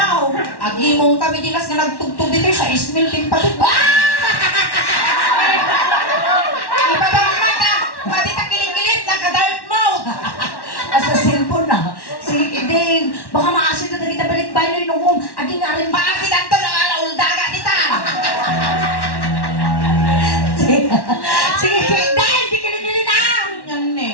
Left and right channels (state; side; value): late; right; 1.1 ms